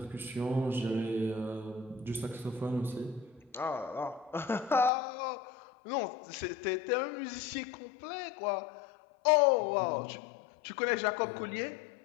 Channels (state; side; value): drops out; right; at 4.9 s